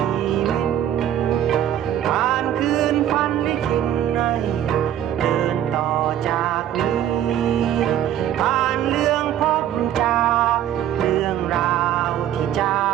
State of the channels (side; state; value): left; quieter; 11.0 dB